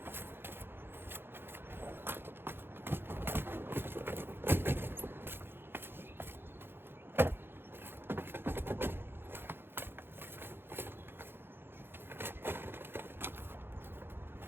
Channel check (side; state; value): left; late; 0.10 ms